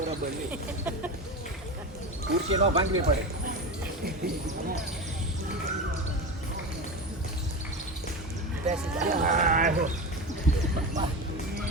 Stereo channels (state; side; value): normal; both; correlation 0.24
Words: નહીં. ખુરશી ન ભાંગવી પડે. બેસી જાઓ.